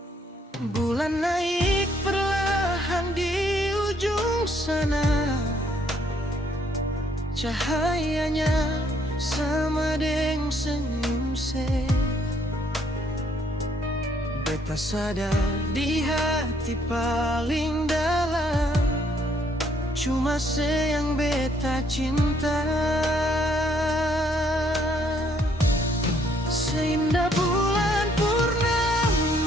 Bulan naik perlahan di ujung sana, cahayanya sama deng senyum se. Beta sadar di hati paling dalam, cuma se yang beta cinta. Seindah bulan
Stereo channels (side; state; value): both; normal; correlation 0.67